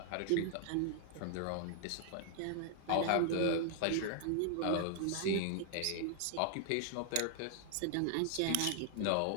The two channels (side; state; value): both; different; correlation 0.00